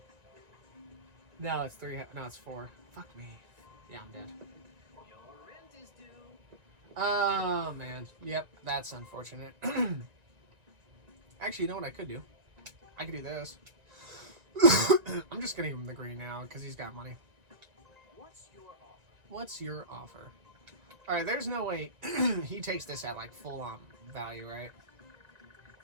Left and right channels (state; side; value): late; left; 1.9 ms